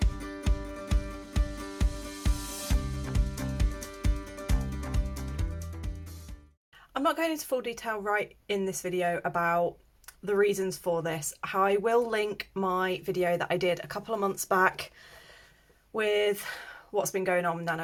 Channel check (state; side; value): identical; both; correlation 1.00